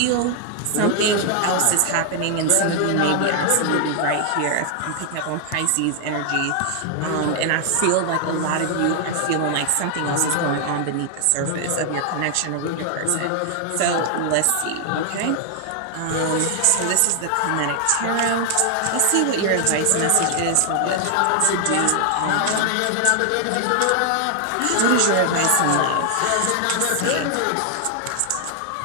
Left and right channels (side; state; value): both; different; correlation 0.00